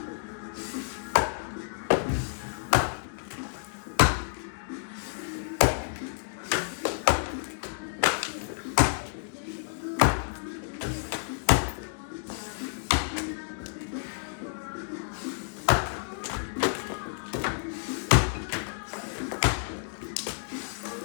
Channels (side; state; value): right; silent; digital silence